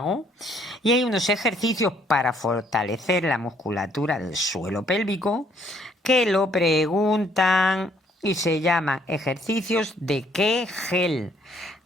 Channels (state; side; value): normal; both; correlation 0.66